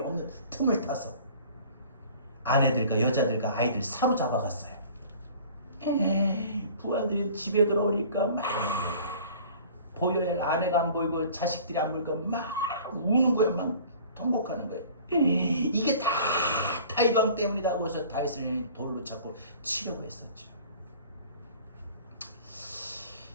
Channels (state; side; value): inverted; both; correlation -0.47